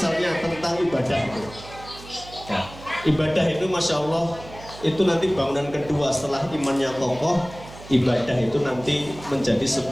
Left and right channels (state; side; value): noise; right; hum, 17 dB below the sound